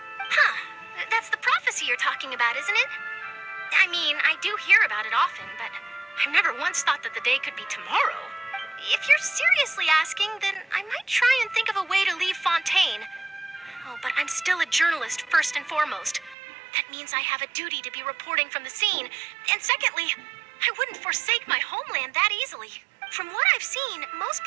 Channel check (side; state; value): left; drops out; at 16.4 s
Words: Huh. That's the prophecy you're talking about, isn't it? I mean, I do hear about it often, but I've never once thought that the day could be tomorrow. If you're seriously asking, then I might try and think of a way to leave Fontaine. Oh, but I'm still a journalist, first and foremost. That means I have a duty to be reporting from the scene. And secondly, I wouldn't forsake my homeland that easily. From what I've seen, most